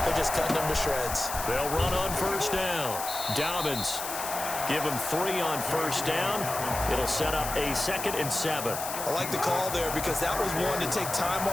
they're just cutting them to shreds. They'll run on first down. Dobbins, give them 3 on first down. It'll set up a 2nd and 7. I like the call there because that was one to take time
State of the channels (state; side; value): noise; left; hiss, 6 dB below the sound